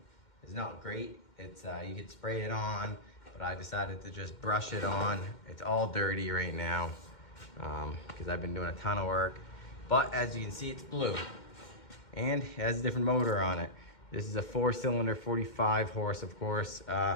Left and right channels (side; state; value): right; late; 2.1 ms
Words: is not great. It's you could spray it on, but I decided to just brush it on. It's all dirty right now because I've been doing a ton of work. But as you can see, it's blue. And it has a different motor on it. This is a 4-cylinder, 45 horse, of course. It's